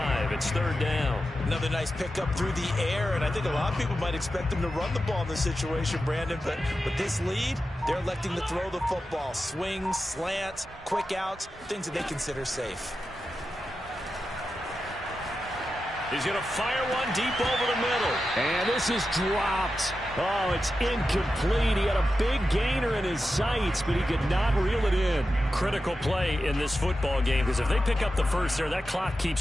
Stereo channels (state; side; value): normal; both; correlation 0.91